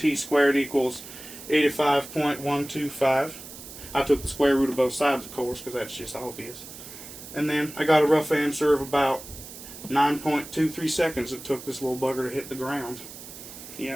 squared equals 85.125. I took the square root of both sides, of course, because that's just obvious. And then I got a rough answer of about 9.23 seconds it took this little bugger to hit the ground.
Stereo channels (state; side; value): noise; right; hiss, 14 dB below the sound